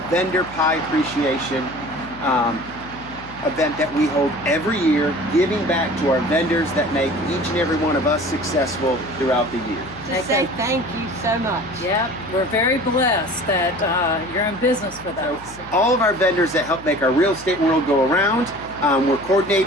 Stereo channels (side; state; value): left; noise; hum, 20 dB below the sound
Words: Vendor Pie Appreciation event that we hold every year, giving back to our vendors that make each and every one of us successful throughout the year. To say thank you so much. Yep, we're very blessed that you're in business with us. All of our vendors that help make our real estate world go around, we're